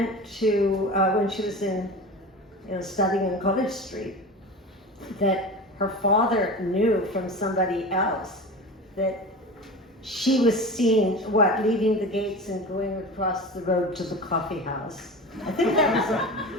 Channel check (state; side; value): normal; both; correlation 0.31